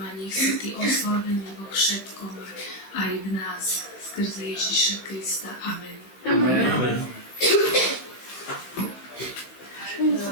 nech si ty oslavený vo všetkom aj v nás, skrze Ježiša Krista. Amen. Amen.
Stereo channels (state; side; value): late; right; 15 ms